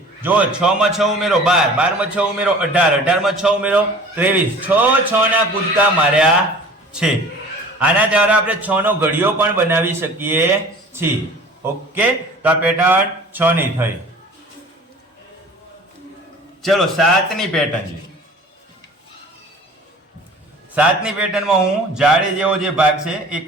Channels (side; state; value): both; normal; correlation 0.44